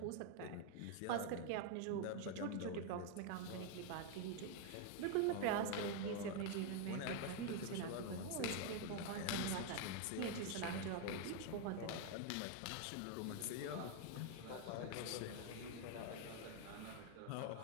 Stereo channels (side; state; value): both; different; correlation 0.01